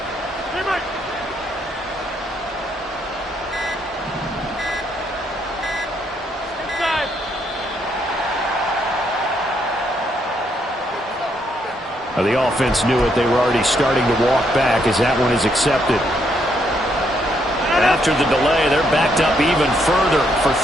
The offense knew it. They were already starting to walk back as that one is accepted. After the delay, they're backed up even further for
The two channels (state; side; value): normal; both; correlation 0.74